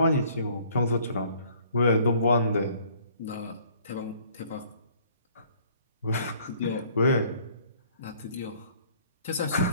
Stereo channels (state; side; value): inverted; both; correlation -0.58